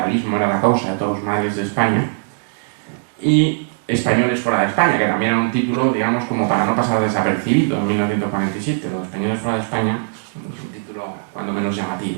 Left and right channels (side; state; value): left; silent; 63 dB below the other